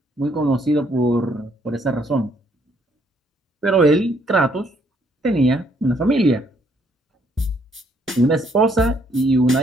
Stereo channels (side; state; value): both; normal; correlation 0.68